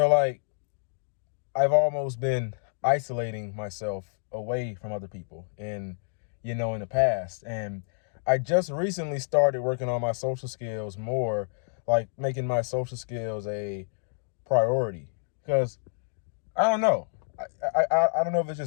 like I've almost been isolating myself away from other people in the past. And I just recently started working on my social skills more, like making my social skills a priority. Because I don't know. I don't know if it's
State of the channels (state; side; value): silent; right; digital silence